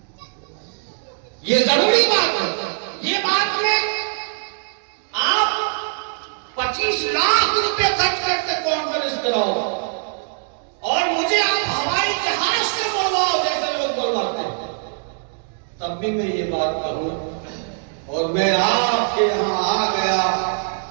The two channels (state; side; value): silent; left; digital silence